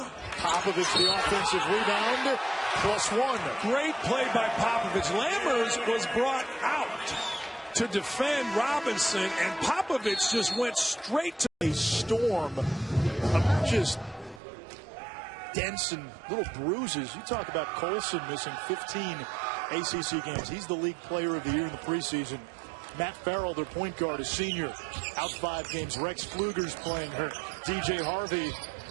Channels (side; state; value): left; drops out; at 14.4 s